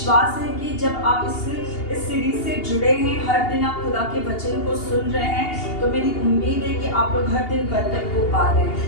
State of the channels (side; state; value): right; late; 2.8 ms